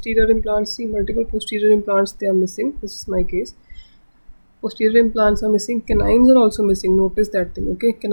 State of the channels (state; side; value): inverted; both; correlation -1.00